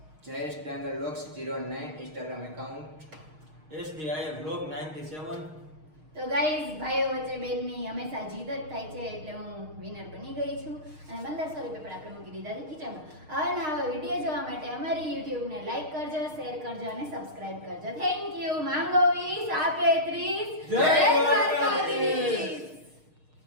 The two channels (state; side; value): late; left; 6.5 ms